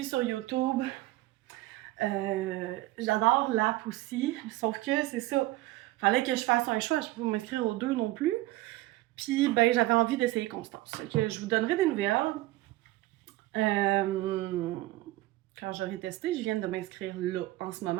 sur YouTube. J'adore l'app aussi, sauf que c'est ça. Fallait que je fasse un choix, je peux pas m'inscrire aux deux non plus. Puis, ben, j'avais envie d'essayer Constance. Fait que je vous donnerai des nouvelles. Quand j'aurai testé, je viens de m'inscrire là en ce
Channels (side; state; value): left; quieter; 17.7 dB